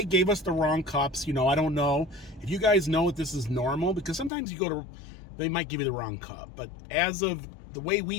gave us the wrong cups. You know, I don't know. If you guys know if this is normal, because sometimes you go to, they might give you the wrong cup. But as of the way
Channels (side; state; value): right; drops out; at 4.3 s